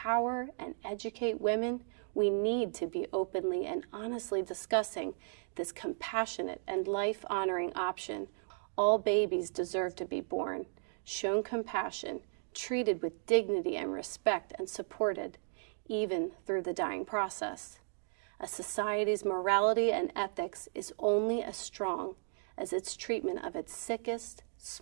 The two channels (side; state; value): left; silent; digital silence